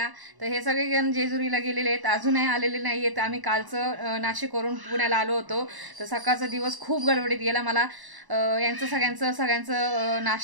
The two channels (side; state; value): left; late; 1.1 ms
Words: तर हे सगळेजण जेजुरीला गेलेले आहेत, अजूनही आलेले नाही आहेत. आम्ही कालचं नाशिकवरून पुण्याला आलो होतो, तर सकाळचा दिवस खूप गडबडीत गेला. मला यांचं सगळ्यांचं